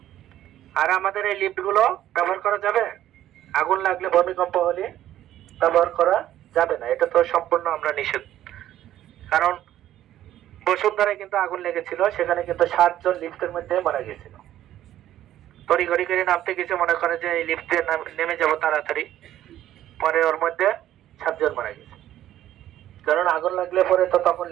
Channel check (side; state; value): left; quieter; 12.6 dB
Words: আর আমাদের এই লিফট গুলো ব্যবহার করা যাবে? আগুন লাগলে, ভূমিকম্প হলে ব্যবহার করা যাবে না, এটা তো সম্পূর্ণ আমরা নিষেধ। কারণ বসুন্ধরায় কিন্তু আগুন লেগেছিল, সেখানে কিন্তু 7 জন লিফটের মধ্যে মারা গেছিল। তড়িঘড়ি করে নামতে গেছে, মনে করে যে এই লিফটে নেমে যাব তাড়াতাড়ি, পরে ওর মধ্যে 7 জন মারা গেছে। কারণ আগুন লাগলে পরে তো তখন